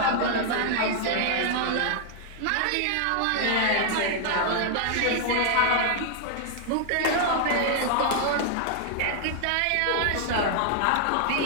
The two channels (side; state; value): both; different; correlation -0.01